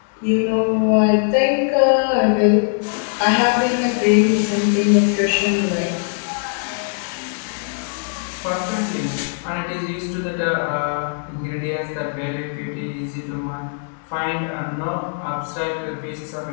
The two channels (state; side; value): silent; right; 65 dB below the other